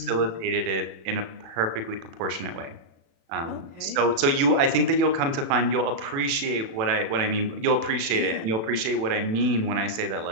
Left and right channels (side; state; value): left; late; 36 ms